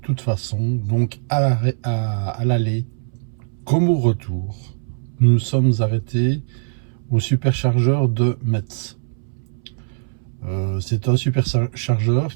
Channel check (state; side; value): silent; left; 65 dB below the other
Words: façon. Donc, à l'aller comme au retour, nous nous sommes arrêtés au superchargeur de Metz. C'est un superchargeur